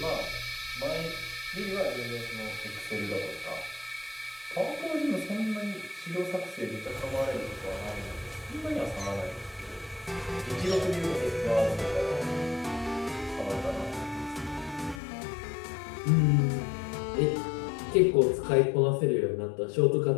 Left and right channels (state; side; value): drops out; right; at 15.0 s